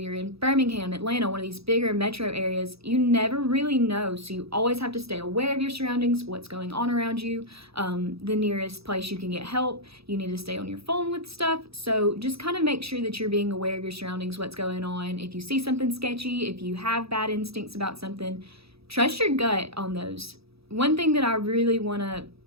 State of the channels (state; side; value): late; left; 0.77 ms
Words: in Birmingham, Atlanta, one of these bigger metro areas, you never really know. So you always have to stay aware of your surroundings, what's going on around you, the nearest place you can get help. You need to stay on your phone with stuff. So just kind of make sure that you're being aware of your surroundings, what's going on. If you see something sketchy, if you have bad instincts about something, trust your gut on those. One thing that I really want to